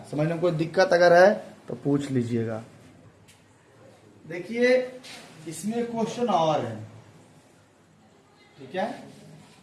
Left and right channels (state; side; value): identical; both; correlation 1.00